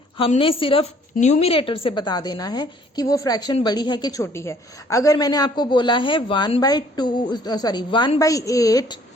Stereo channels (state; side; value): normal; both; correlation 0.59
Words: हमने सिर्फ न्यूमिरेटर से बता देना है कि वो फ्रैक्शन बड़ी है कि छोटी है। अगर मैंने आपको बोला है 1/8,